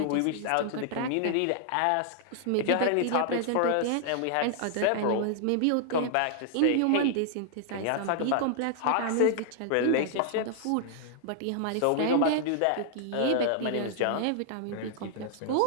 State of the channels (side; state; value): both; different; correlation 0.00